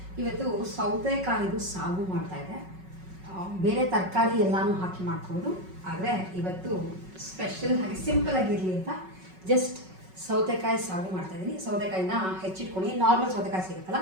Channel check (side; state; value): left; late; 5.4 ms